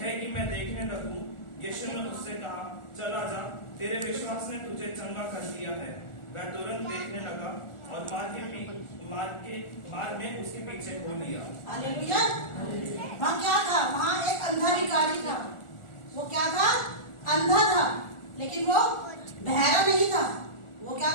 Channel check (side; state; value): right; late; 1.4 ms